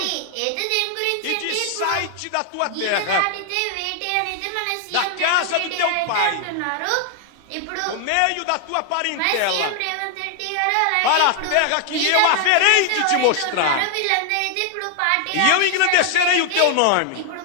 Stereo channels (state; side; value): different; both; correlation 0.00